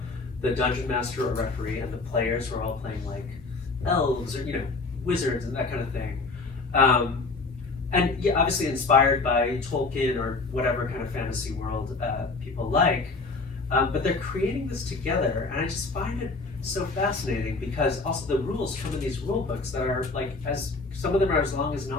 the dungeon master or referee, and the players who are all playing like elves or, you know, wizards and that kind of thing. And yeah, obviously inspired by Tolkien or whatever kind of fantasy world people like, but they're creating this together, and I just find it so fascinating because also the rules come in these rule books that are like, as some of them are as long as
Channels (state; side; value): quieter; right; 3.8 dB